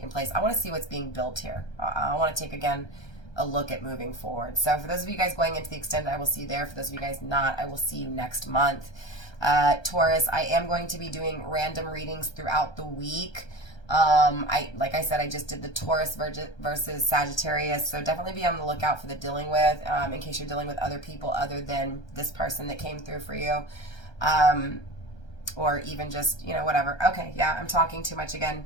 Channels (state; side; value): late; right; 1.3 ms